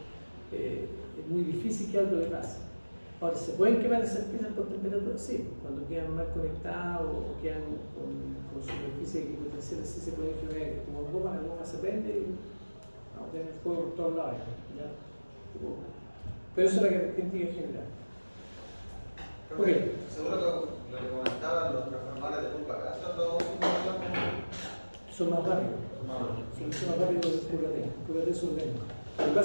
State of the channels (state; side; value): inverted; both; correlation -1.00